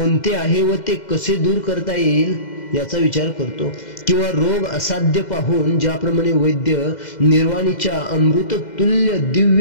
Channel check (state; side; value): late; right; 2.0 ms